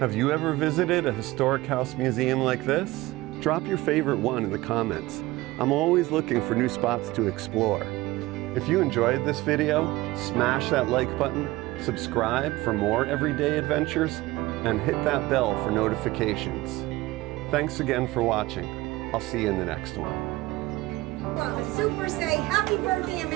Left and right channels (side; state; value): left; quieter; 19.2 dB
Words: you ever visited a historic house museum like this? Drop your favorite one in the comments. I'm always looking for new spots to explore. If you enjoyed this video, smash that like button, subscribe for more everyday adventures, and hit that bell for notifications. Thanks again for watching. I'll see you in the next one. Well, a super say, Happy Birthday